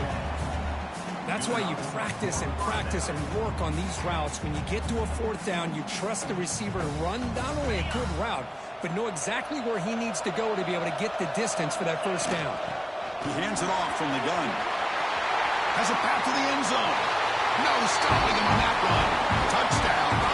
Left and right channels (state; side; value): identical; both; correlation 1.00